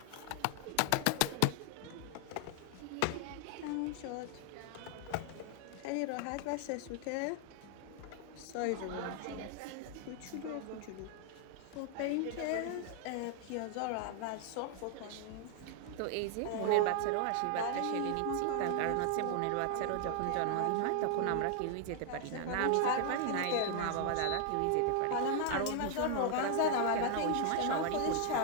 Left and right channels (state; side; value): different; both; correlation 0.00